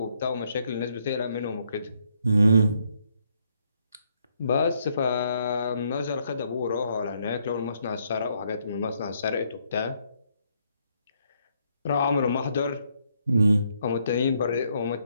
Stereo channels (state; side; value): inverted; both; correlation -0.72